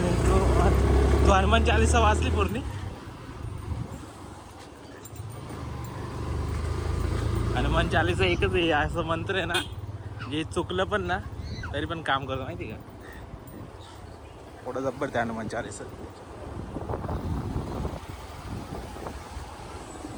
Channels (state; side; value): identical; both; correlation 1.00